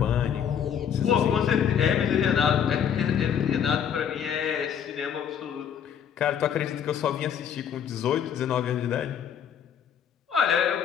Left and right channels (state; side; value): quieter; right; 8.4 dB